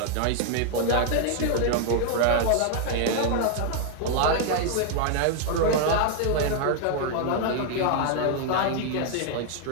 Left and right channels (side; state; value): both; different; correlation 0.00